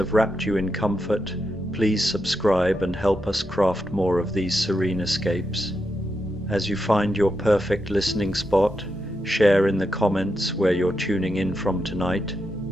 wrapped you in comfort, please subscribe and help us craft more of these serene escapes. As you find your perfect listening spot, share in the comments where you're tuning in from tonight,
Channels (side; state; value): both; normal; correlation 0.85